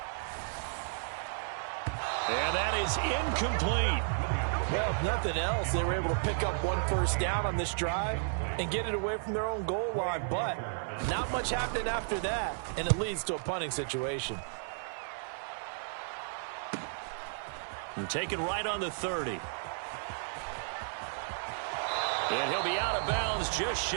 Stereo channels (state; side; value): silent; left; 56 dB below the other